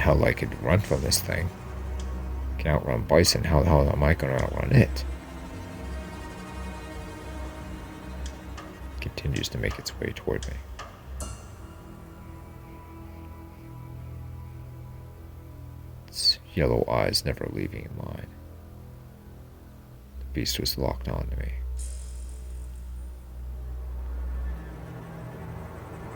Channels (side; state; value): both; identical; correlation 1.00